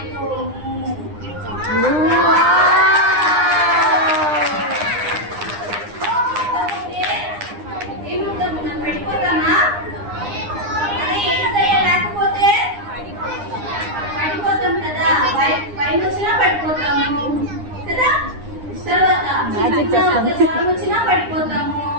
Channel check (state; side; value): late; left; 9.8 ms